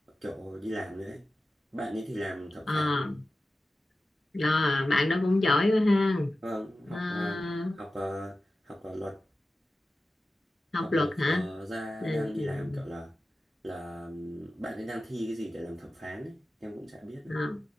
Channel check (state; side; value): normal; both; correlation 0.94